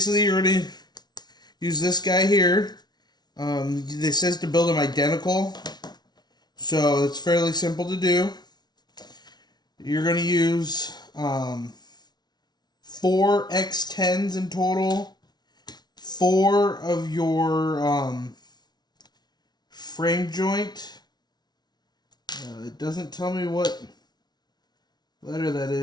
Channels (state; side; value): late; right; 0.20 ms